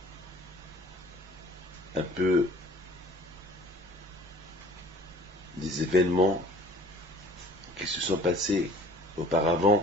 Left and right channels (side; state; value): both; normal; correlation 0.50